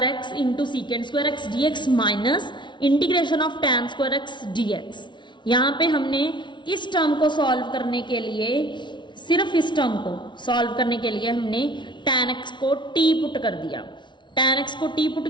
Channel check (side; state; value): right; late; 0.23 ms